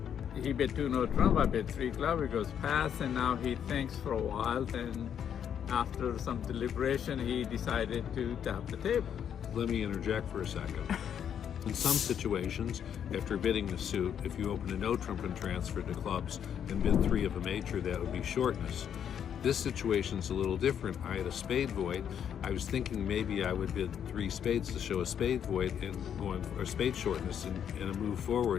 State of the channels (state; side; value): quieter; right; 8.7 dB